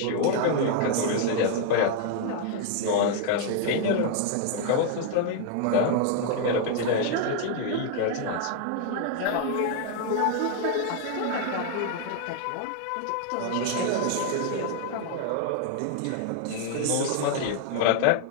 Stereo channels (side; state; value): both; different; correlation 0.00